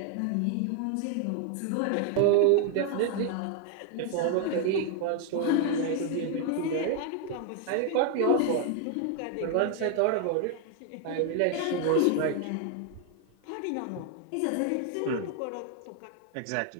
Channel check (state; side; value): different; both; correlation 0.00